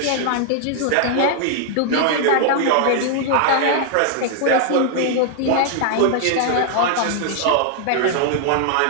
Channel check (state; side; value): different; both; correlation 0.00